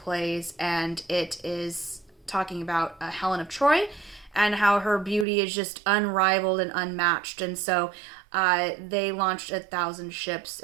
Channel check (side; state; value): left; drops out; at 5.2 s